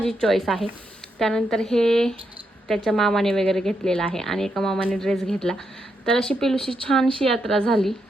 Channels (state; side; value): normal; both; correlation 0.81